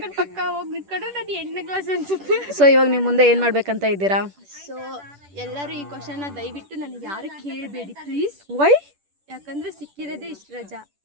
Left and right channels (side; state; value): left; late; 10 ms